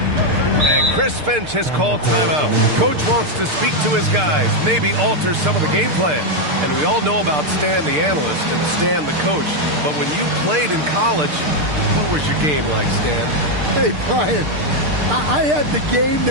Chris Finch has called timeout. Coach wants to speak to his guys, maybe alter some of the game plan. And we all know about Stan the analyst and Stan the coach. But when you played in college, what was your game like, Stan? Hey, Brian, I had the game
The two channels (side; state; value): left; late; 6.6 ms